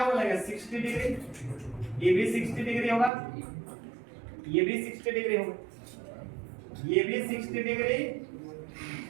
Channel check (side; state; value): left; drops out; at 3.1 s